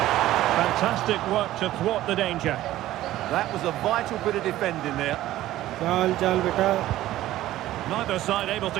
Fantastic work to thwart the danger. That was a vital bit of defending there. Neither side able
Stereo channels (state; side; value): quieter; left; 14.7 dB